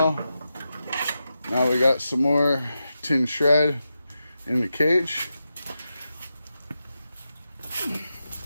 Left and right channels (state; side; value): inverted; both; correlation -0.89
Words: Now we got some more tin shred in the cage.